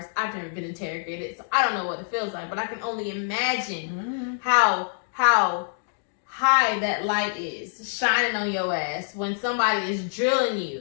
I've never been interrogated, so I don't know what it feels like, but I can only imagine how high that light is shining on your ass when somebody is drilling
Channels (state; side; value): silent; right; digital silence